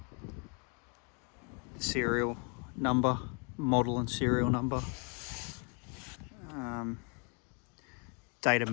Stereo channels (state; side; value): quieter; right; 36.3 dB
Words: serial number, model and serial number. Date of